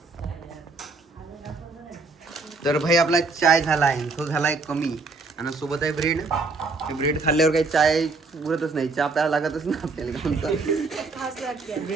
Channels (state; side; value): quieter; left; 3.9 dB